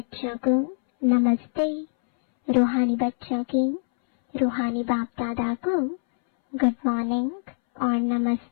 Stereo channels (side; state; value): right; silent; 62 dB below the other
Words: को नमस्ते। रूहानी बच्चों की रूहानी बाप दादा को गुड मॉर्निंग और